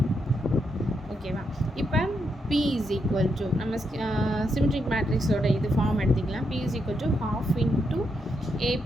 ஓகேவா? இப்போ P இஸ் ஈக்குவல் டு நம்ம சிமெட்ரிக் மேட்ரிக்ஸோட இது ஃபார்ம் எடுத்துக்கலாம். P is equal to ½ into A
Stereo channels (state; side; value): normal; both; correlation 0.81